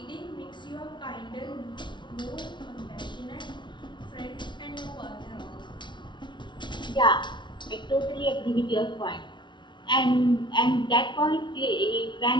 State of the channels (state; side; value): late; right; 0.23 ms